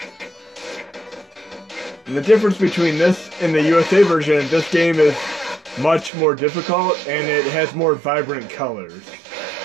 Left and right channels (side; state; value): left; drops out; at 6.1 s